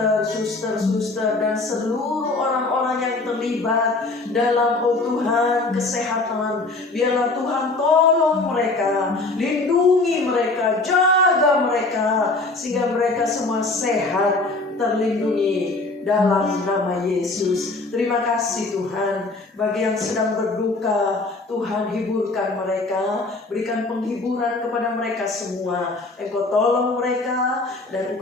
suster-suster dan seluruh orang-orang yang terlibat dalam Tuhan kesehatan. Biarlah Tuhan tolong mereka, lindungi mereka, jaga mereka, sehingga mereka semua sehat, terlindungi dalam nama Yesus. Terima kasih Tuhan. Bagi yang sedang berduka, Tuhan hiburkan mereka, berikan penghiburan kepada mereka semua. Engkau tolong mereka dan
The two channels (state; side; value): quieter; right; 3.3 dB